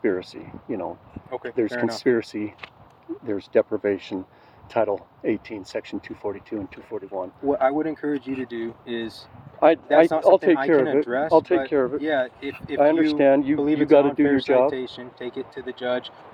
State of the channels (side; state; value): both; identical; correlation 1.00